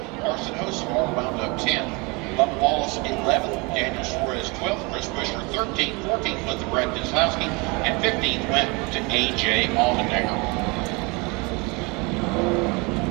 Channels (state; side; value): quieter; left; 27.7 dB